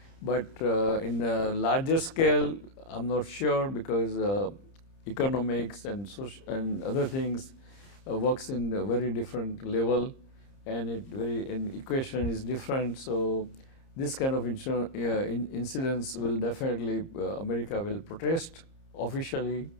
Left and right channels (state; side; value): late; right; 30 ms